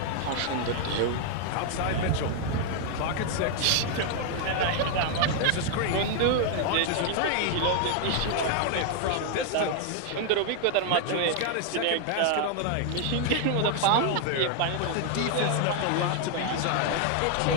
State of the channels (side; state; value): both; different; correlation 0.00